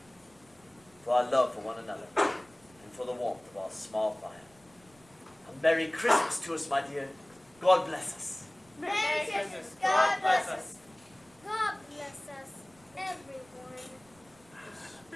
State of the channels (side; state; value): right; noise; rumble, 29 dB below the sound